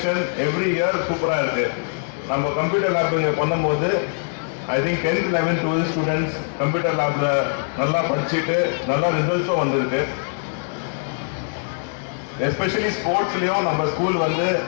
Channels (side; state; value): right; silent; digital silence